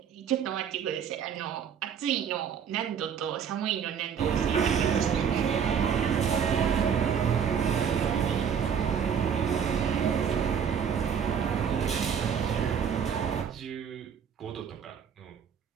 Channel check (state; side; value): quieter; left; 7.6 dB